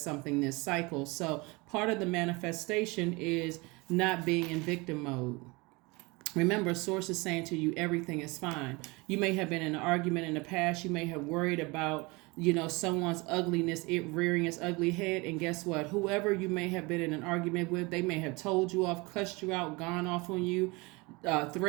something this cycle. So part of the manifestation is not being in victim mode. Remember, source is saying to you, everything is fine. You may have been in an argument in the past. You may have worried about, someone's ugliness, it rearing its ugly head. And guess what? Whoever you may have been in an argument with, they may have told you off, cussed you out, gone off on you,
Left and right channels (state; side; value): quieter; left; 25.5 dB